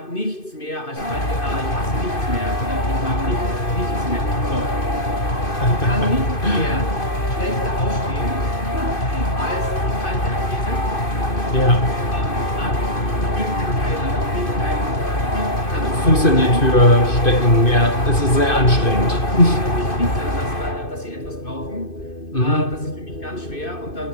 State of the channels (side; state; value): right; late; 2.5 ms